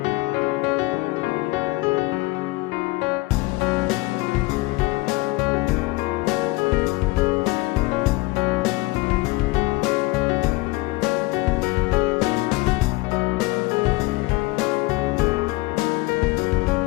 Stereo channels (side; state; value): right; quieter; 22.2 dB